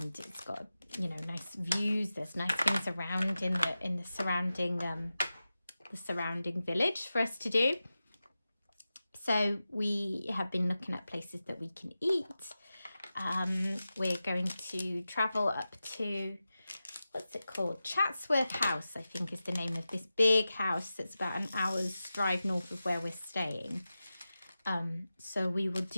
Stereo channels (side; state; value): both; inverted; correlation -0.94